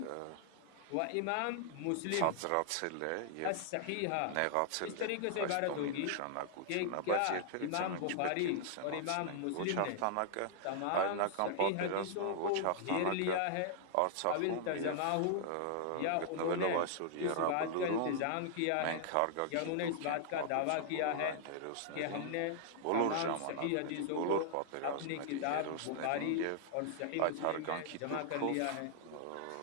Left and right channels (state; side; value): different; both; correlation -0.01